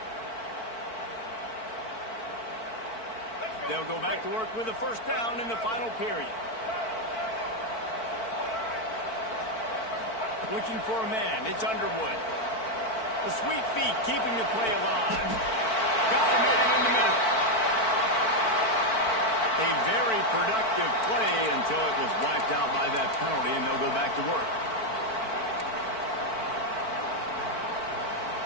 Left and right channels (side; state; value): right; late; 4.5 ms